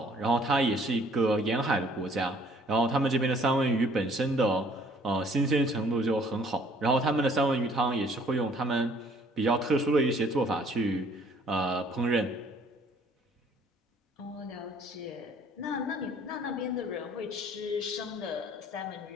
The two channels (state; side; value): normal; both; correlation 0.59